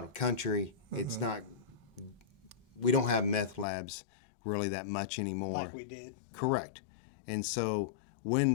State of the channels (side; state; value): right; drops out; at 3.7 s